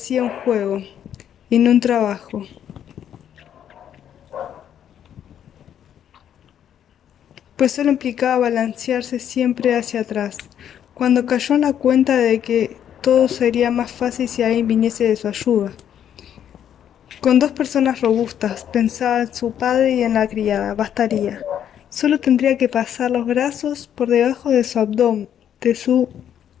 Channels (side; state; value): right; quieter; 9.6 dB